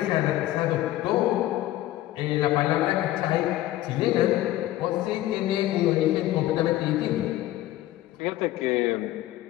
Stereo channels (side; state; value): right; quieter; 15.2 dB